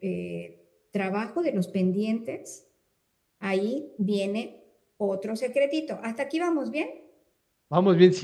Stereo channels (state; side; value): identical; both; correlation 1.00